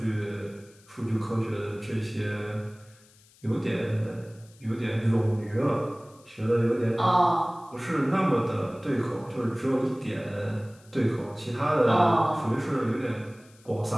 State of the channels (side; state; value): left; noise; hiss, 28 dB below the sound